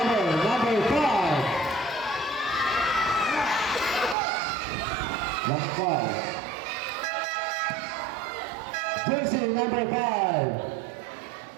5. Last 5. Jersey number 5.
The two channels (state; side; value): drops out; left; at 4.2 s